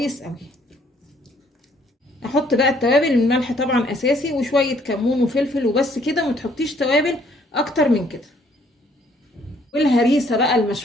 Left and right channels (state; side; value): normal; both; correlation 0.64